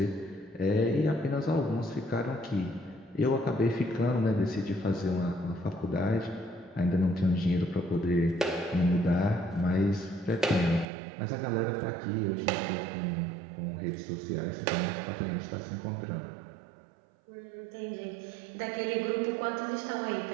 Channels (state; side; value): drops out; left; at 10.9 s